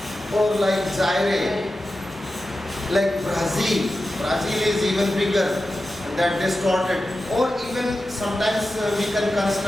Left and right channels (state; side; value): normal; both; correlation 0.92